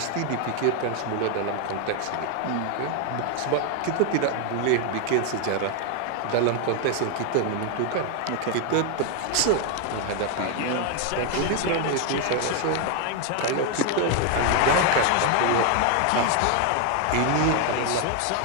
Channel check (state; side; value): different; both; correlation 0.01